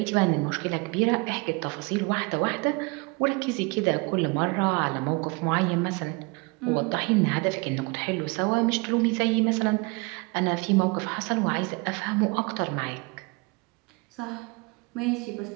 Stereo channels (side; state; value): left; quieter; 28.2 dB